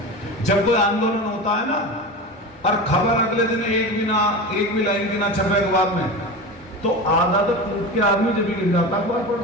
जब कोई आंदोलन होता है ना और खबर अगले दिन एक भी लाइन की ना छपे अखबार में, तो आधा तो टूट के आदमी जब भी गिर जाता अखबार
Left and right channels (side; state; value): both; normal; correlation 0.27